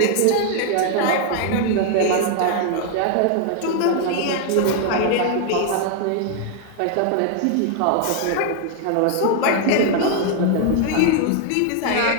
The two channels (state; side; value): different; both; correlation 0.00